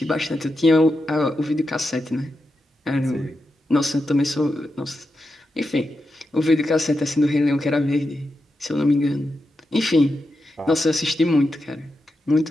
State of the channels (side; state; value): both; normal; correlation 0.88